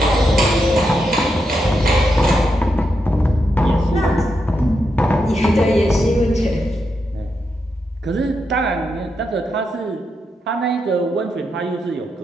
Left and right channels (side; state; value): both; normal; correlation 0.84